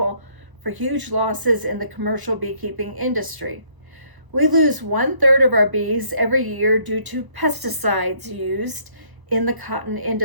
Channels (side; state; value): left; late; 1.0 ms